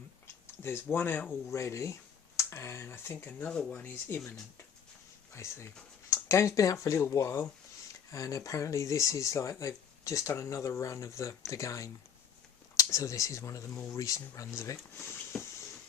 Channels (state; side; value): quieter; right; 7.7 dB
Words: There's one out already, and I think another one is imminent, basically. The game's been out for a little while, and apparently this is like they've just done another run of the game. So this is one of the more recent runs of it.